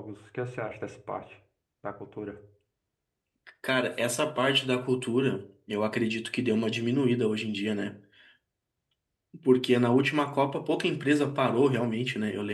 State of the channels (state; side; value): identical; both; correlation 1.00